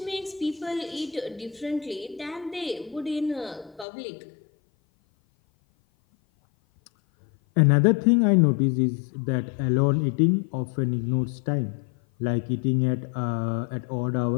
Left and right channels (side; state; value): right; drops out; at 3.9 s